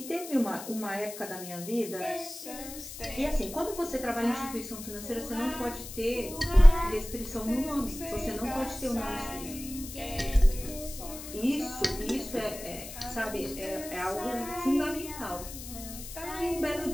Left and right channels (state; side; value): noise; left; hiss, 12 dB below the sound